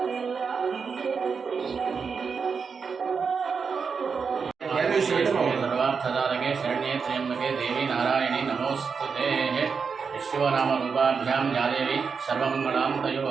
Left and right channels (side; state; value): left; quieter; 5.6 dB